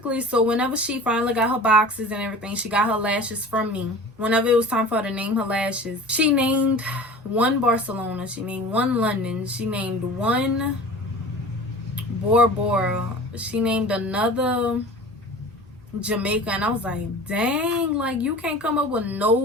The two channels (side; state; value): both; normal; correlation 0.39